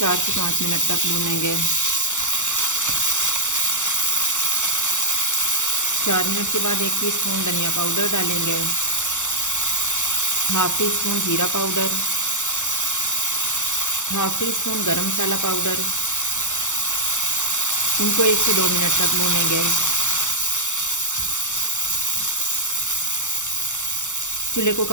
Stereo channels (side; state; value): right; late; 0.85 ms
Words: से 5 मिनट तक भूनेंगे। 4 मिनट के बाद 1 टीस्पून धनिया पाउडर डालेंगे, हाफ टी स्पून जीरा पाउडर, हाफ टी स्पून गरम मसाला पाउडर। इनको 1 से 2 मिनट तक भूनेंगे। चूल्हे को